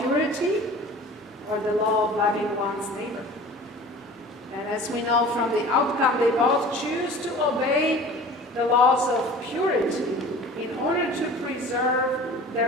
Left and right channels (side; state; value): both; normal; correlation 0.42